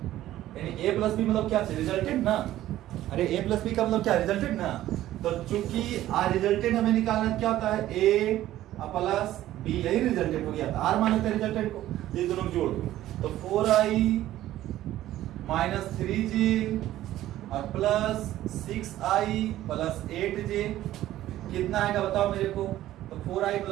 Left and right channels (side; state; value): left; quieter; 14.0 dB